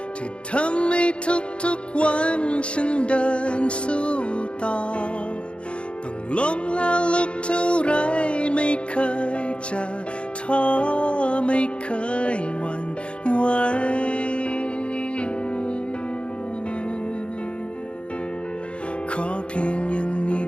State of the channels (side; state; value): right; late; 0.058 ms